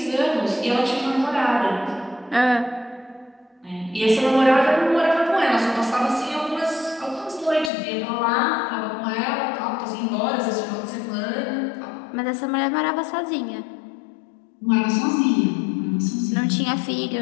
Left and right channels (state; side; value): drops out; right; at 7.7 s